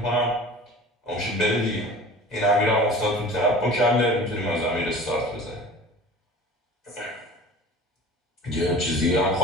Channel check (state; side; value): normal; both; correlation 0.41